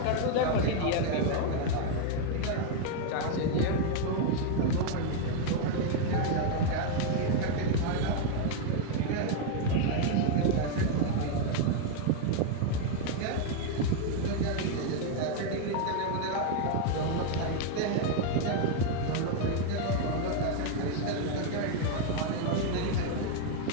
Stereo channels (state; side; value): different; both; correlation 0.00